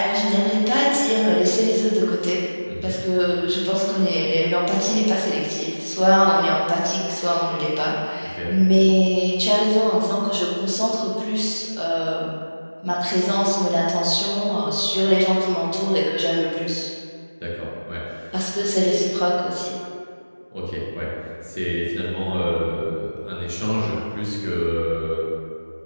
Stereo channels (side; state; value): both; inverted; correlation -1.00